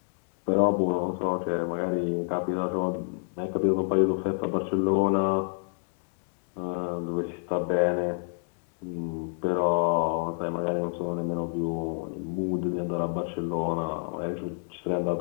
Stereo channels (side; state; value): right; silent; digital silence